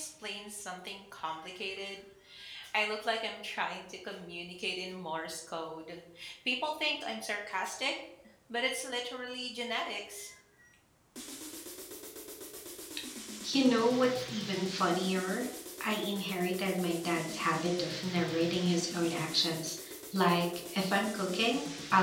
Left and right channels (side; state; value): both; identical; correlation 1.00